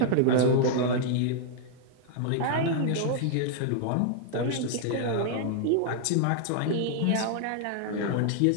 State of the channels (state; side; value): different; both; correlation 0.00